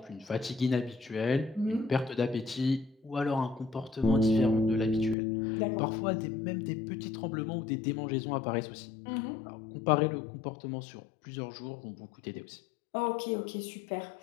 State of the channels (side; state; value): right; drops out; at 5.2 s